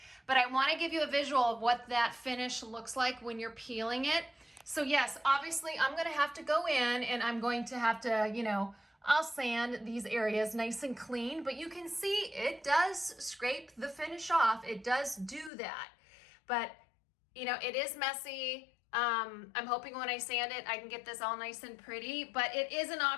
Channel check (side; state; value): right; drops out; at 15.5 s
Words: But I want to give you a visual of what that finish looks like when you're peeling it. So yes, obviously I'm going to have to go in and I'm going to have to, you know, I'll sand these areas nice and clean. But you can see it does scrape the finish off. It does do that. But, you know, it is messy. I'm hoping when I sand it, I can get this all nice and pretty, but it is an